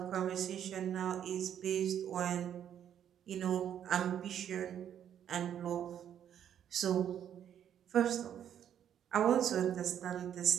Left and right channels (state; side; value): quieter; left; 9.7 dB